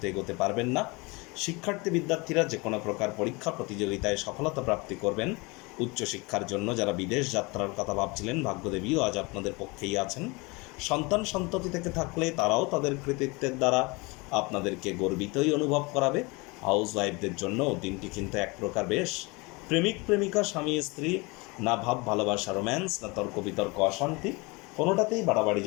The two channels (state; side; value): quieter; right; 26.3 dB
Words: এগোতে পারবেন না। শিক্ষার্থী বিদ্যার্থীরা যে কোনো প্রকার পরীক্ষা প্রতিযোগিতায় সফলতা প্রাপ্তি করবেন। উচ্চশিক্ষার জন্য যারা বিদেশ যাত্রার কথা ভাবছিলেন, ভাগ্যদেবীও আজ আপনাদের পক্ষেই আছেন। সন্তান সন্ততি থেকে থাকলে তারাও তাদের কৃতিত্বের দ্বারা আপনাদেরকে গর্বিতই অনুভব করাবে। হাউস ওয়াইফদের জন্য দিনটি কিন্তু এক প্রকার বেশ। প্রেমিক প্রেমিকা, স্বামী স্ত্রী, না ভাব ভালোবাসা রোম্যান্স, না তর্ক বিতর্ক অশান্তি, কোনোটাতেই বাড়াবাড়ি